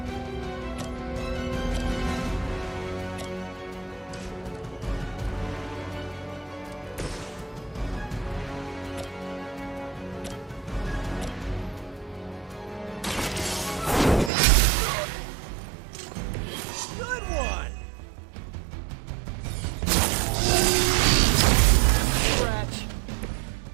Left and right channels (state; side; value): drops out; left; at 14.3 s